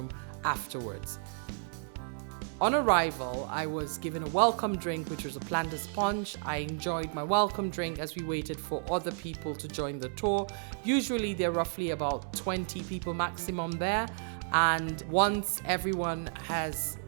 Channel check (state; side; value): silent; left; digital silence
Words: afterwards. On arrival, I was given a welcome drink, which was a planter's punch. I enjoyed my welcome drink as we waited for other people to join the tour. Usually there are roughly about 20 people maximum there, and once everyone has